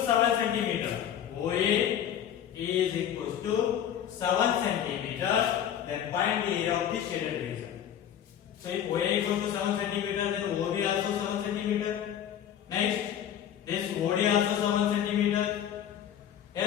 7 centimeter, OA is equals to 7 centimeter, then find the area of the shaded region. So if OA equals to 7 centimeter, then OB also 7 centimeter. Next, this OD also 7 centimeter.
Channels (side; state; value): right; quieter; 9.8 dB